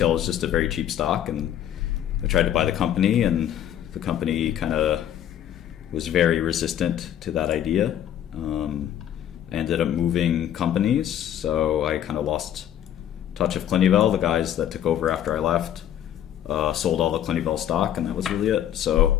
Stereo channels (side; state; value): right; quieter; 10.7 dB